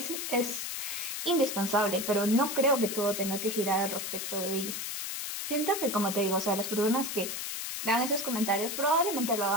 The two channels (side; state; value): left; noise; hiss, 4 dB below the sound